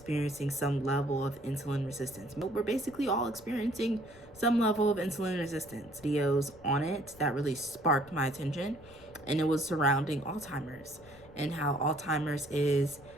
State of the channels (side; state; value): left; noise; rumble, 22 dB below the sound